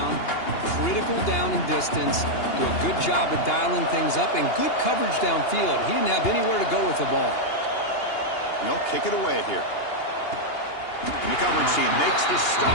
critical down and distance. Do a good job of dialing things up, and good coverage downfield. He didn't have anywhere to go with the ball. They'll kick it away here. And the coverage team makes the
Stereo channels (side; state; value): right; late; 2.8 ms